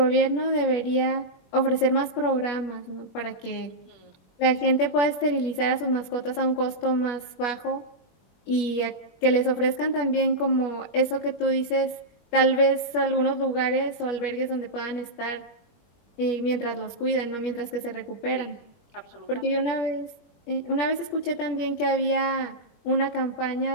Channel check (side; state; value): right; late; 21 ms